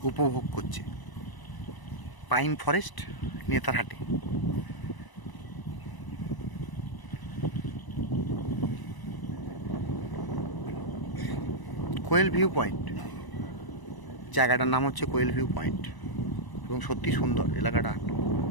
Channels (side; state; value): right; late; 1.0 ms